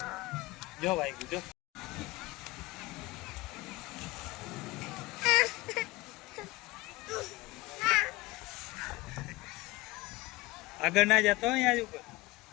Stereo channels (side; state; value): right; quieter; 21.2 dB